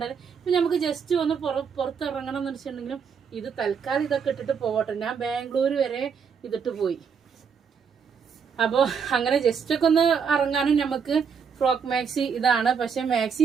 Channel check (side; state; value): left; quieter; 6.5 dB